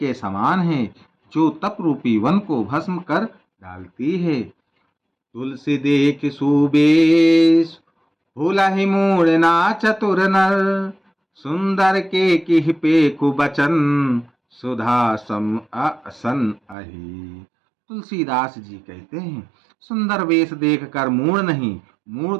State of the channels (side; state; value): left; drops out; at 16.8 s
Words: समान है, जो तप रूपी वन को भस्म कर डालती है। तुलसी देख सुबेश, भूलहि मूढ़ ना चतुर नर। सुंदर के किह पेखु बचन, सुधा सम असन अहि। तुलसीदास जी कहते हैं, सुंदर वेश देखकर मूढ़ नहीं, मूढ़